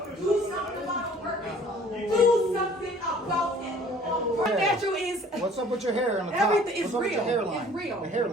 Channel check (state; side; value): normal; both; correlation 0.53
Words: Do something about the workers. Do something about it. What natural is What's up with your hair on the top? everything is What's up with your real. hairline? It's real. The